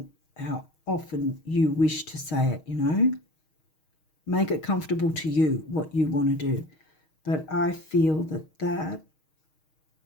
how often you wish to say it, Make it comfortable to you, what you want to do. But I feel that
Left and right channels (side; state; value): right; late; 6.4 ms